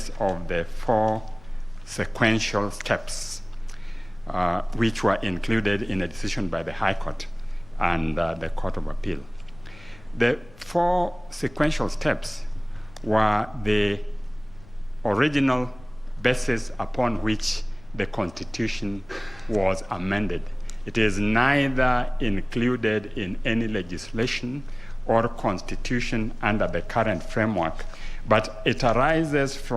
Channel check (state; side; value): noise; left; rumble, 23 dB below the sound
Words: of the 4 sequential steps which were included in a decision by the High Court and the Court of Appeal. The 4 sequential steps were the original basis upon which the Constitution was amended. It is neither included in any legislation or constitution under the current framework, but it arises